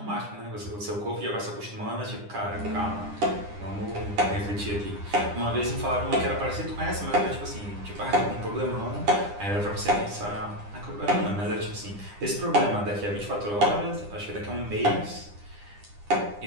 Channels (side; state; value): left; late; 9.9 ms